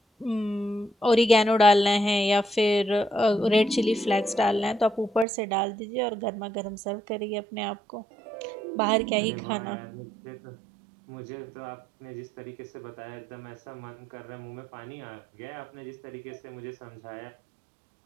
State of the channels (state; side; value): drops out; left; at 5.2 s